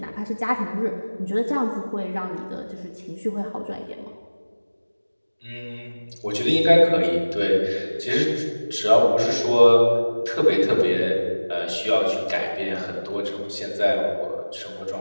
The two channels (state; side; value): inverted; both; correlation -1.00